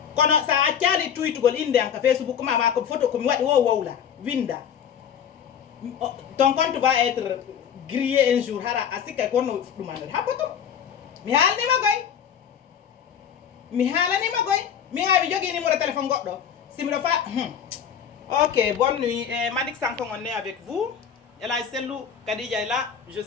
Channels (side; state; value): right; quieter; 8.2 dB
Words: Quand ça a tiali tweet gol inde en Facebook, ma comme photo comme wadi wo là, winda. Ton compte va être grillé un jour. Hara asika kono dumande. Ha poto. Mi halni magoy. Mi hawi jogi numéro téléphone goddo. Si mi do fa OK, bonne nuit. Madik Sanko on est avec vous. Ela Selou Kadija est là, je